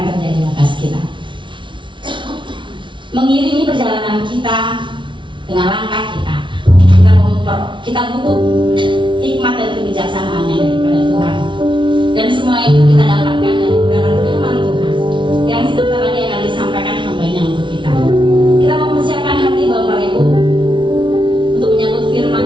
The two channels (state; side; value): late; left; 0.24 ms